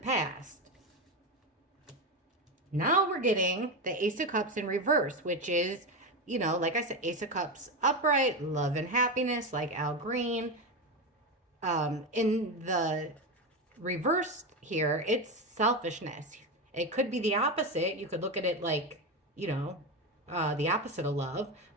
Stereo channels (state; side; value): normal; both; correlation 0.15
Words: Now we're getting the Ace of Cups in reverse, which is, like I said, Ace of Cups upright, love and happiness, like Al Green. In the reverse here, it's selfishness. It could be the opposite. You could look at it like, the opposite of love,